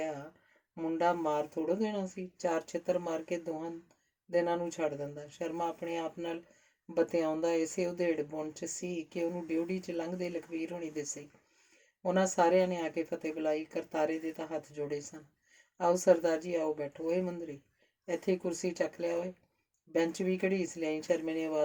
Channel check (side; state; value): both; identical; correlation 1.00